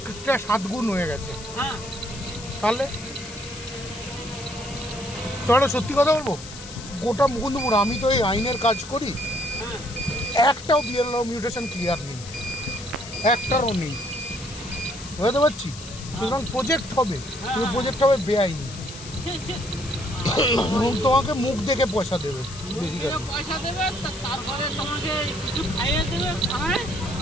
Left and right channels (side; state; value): left; noise; hiss, 14 dB below the sound